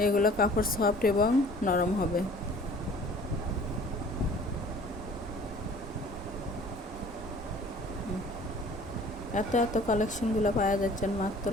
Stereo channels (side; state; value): both; normal; correlation 0.49